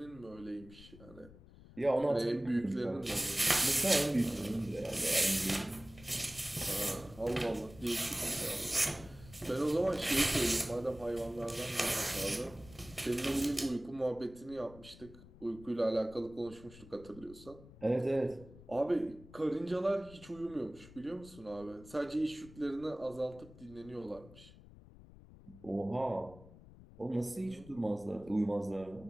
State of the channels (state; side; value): noise; left; rumble, 19 dB below the sound